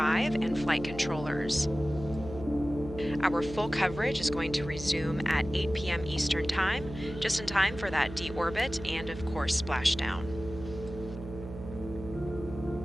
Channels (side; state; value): right; noise; hum, 11 dB below the sound